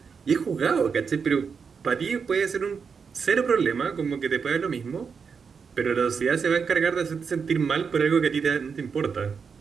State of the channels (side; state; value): left; quieter; 5.9 dB